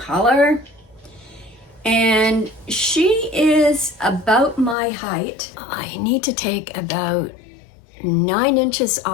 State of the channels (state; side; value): drops out; right; at 4.8 s